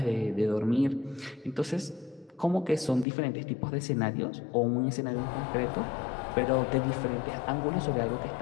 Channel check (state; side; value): drops out; right; at 3.1 s